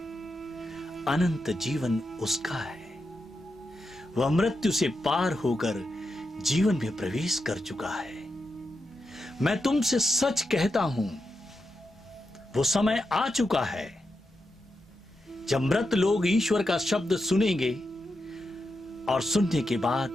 अनंत जीवन उसका है। वह मृत्यु से पार होकर जीवन में प्रवेश कर चुका है। मैं तुमसे सच कहता हूं, वो समय आ चुका है जब मृत लोग ईश्वर का शब्द सुनेंगे और सुनने के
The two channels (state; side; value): normal; both; correlation 0.87